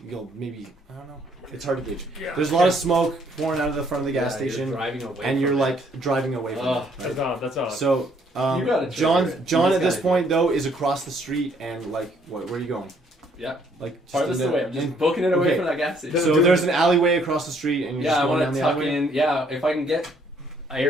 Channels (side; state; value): both; normal; correlation 0.66